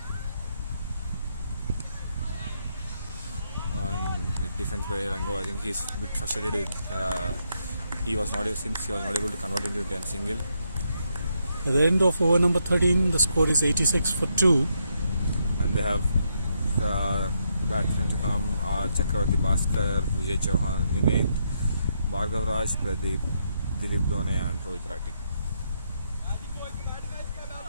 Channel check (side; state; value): both; inverted; correlation -0.78